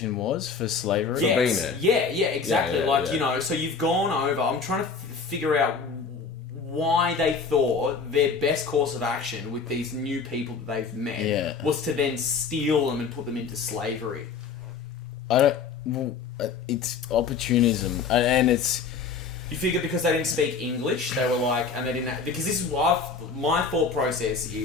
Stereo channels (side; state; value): right; quieter; 5.2 dB